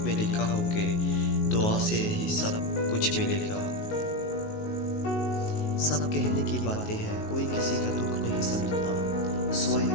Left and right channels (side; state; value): right; late; 19 ms